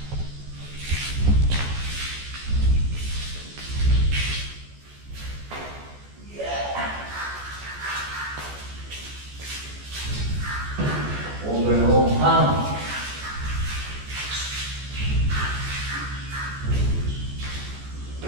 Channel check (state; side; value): late; left; 14 ms